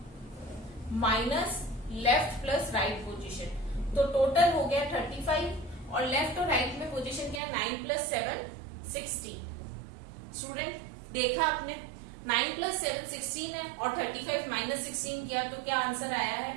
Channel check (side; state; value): left; drops out; at 7.4 s